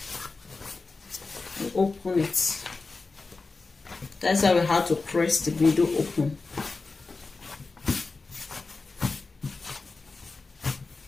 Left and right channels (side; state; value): right; quieter; 3.9 dB